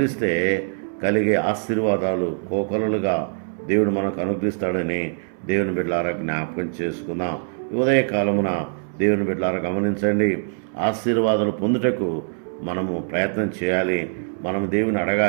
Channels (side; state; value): left; silent; 63 dB below the other